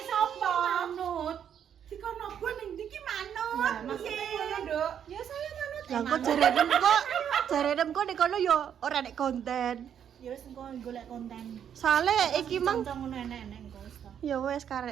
sapa? Manut. Dikono gua ning ndi ki manut. Lah maksudnya ngono, Nduk. Ya saya manut. Lah kok jaredem kok nek kono yo ora nek konten. Ya wis engko golek konten. Soale iki mang Contoh ngono enek-enek engko wis to. ya wes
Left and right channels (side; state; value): left; quieter; 8.8 dB